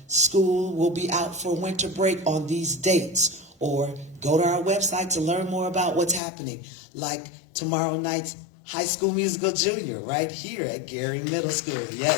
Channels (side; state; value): right; drops out; at 6.2 s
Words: school will be out for winter break on these dates, or go to our website to learn more about what's happening, like tomorrow night's High School Musical Junior right here at Gary Middle School.